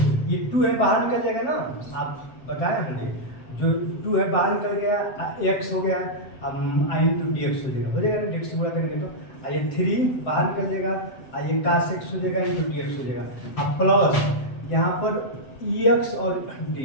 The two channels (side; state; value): right; late; 7.8 ms